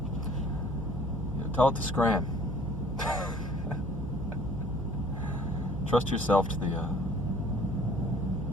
and tell it to scram. Trust yourself to the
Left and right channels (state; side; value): noise; right; hum, 10 dB below the sound